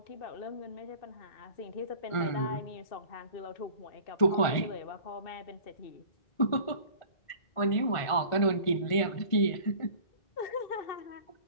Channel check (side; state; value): right; late; 1.5 ms